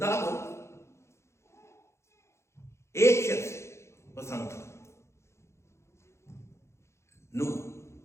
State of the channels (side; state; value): right; late; 0.13 ms